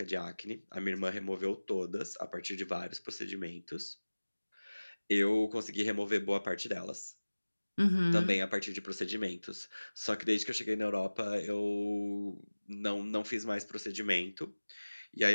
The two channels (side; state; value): both; inverted; correlation -1.00